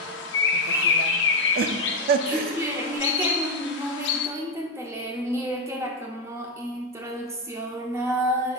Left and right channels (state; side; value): normal; both; correlation 0.06